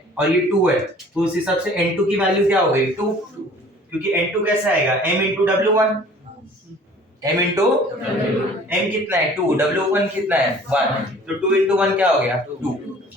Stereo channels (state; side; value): normal; both; correlation 0.50